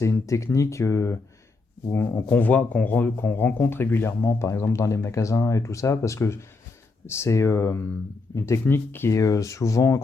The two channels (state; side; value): quieter; right; 3.7 dB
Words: une technique qu'on rencontre régulièrement, par exemple dans les magasins et tout ça, parce que c'est une technique qui est souvent